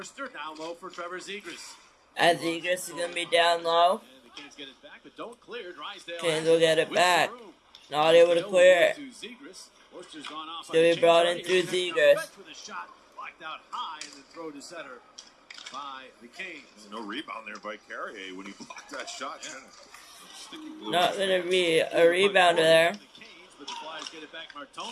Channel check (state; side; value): identical; both; correlation 1.00